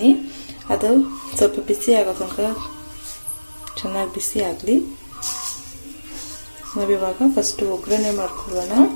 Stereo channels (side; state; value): both; inverted; correlation -1.00